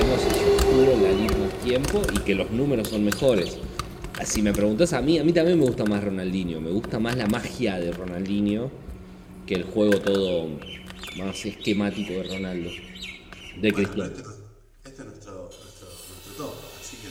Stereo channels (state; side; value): identical; both; correlation 1.00